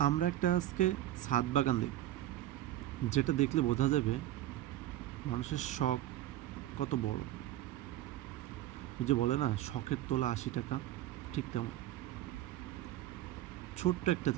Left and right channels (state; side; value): quieter; left; 14.0 dB